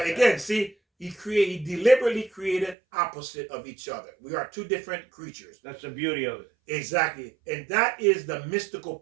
again, see, he deliberately created opposite of each other. We are two different creatures. That's the beauty of it. Exactly. And that is the mystical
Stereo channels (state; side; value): drops out; left; at 2.8 s